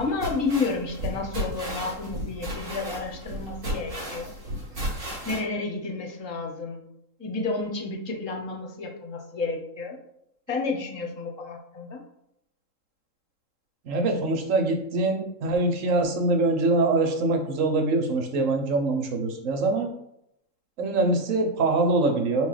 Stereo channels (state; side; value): late; left; 3.7 ms